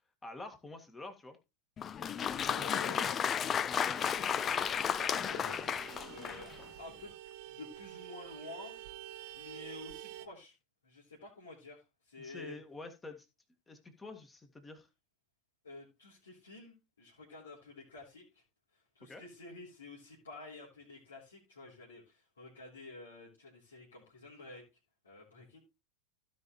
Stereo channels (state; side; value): quieter; right; 6.4 dB